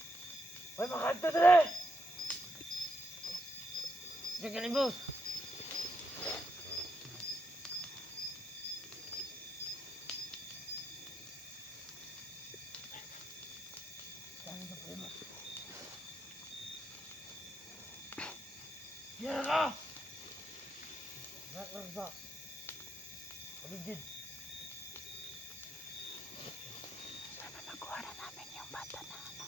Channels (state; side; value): normal; both; correlation 0.79